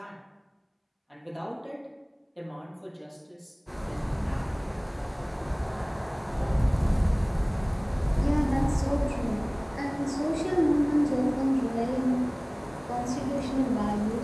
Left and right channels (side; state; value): both; identical; correlation 1.00